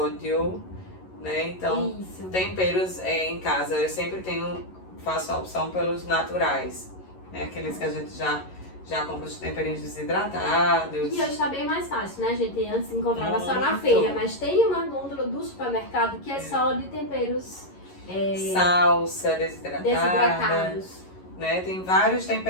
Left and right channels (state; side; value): late; right; 11 ms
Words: né? Então, isso. Temperos em casa, eu sempre faço a opção pelos naturais, né? Aqueles que a gente já compra os temperinhos desidratados. E hoje tá bem mais fácil, né? A gente antes encontrava só na feira, mas tem uma gôndola do supermercado que é só de temperos salsa desidratados. desidratados. Né? Tem vários